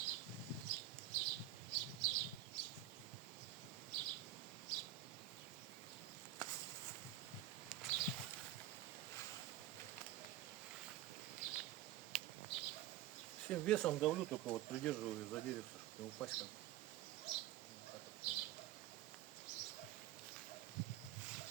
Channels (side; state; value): left; quieter; 12.9 dB